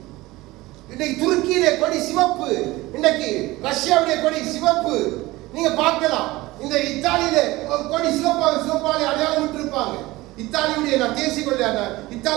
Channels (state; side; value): quieter; left; 19.5 dB